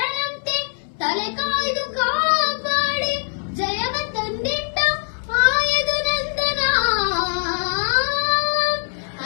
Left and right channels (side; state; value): right; silent; 64 dB below the other